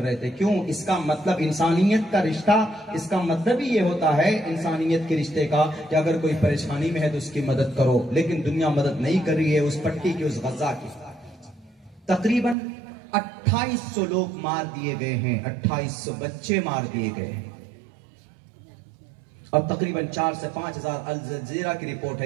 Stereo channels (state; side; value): drops out; left; at 12.6 s